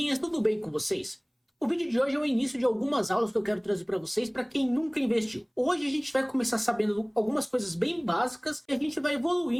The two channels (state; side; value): identical; both; correlation 1.00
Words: tudo bem com vocês? O vídeo de hoje é o início de algumas aulas que eu quero trazer para vocês para quem nunca investiu. Hoje a gente vai começar sabendo algumas coisas bem básicas e a gente vai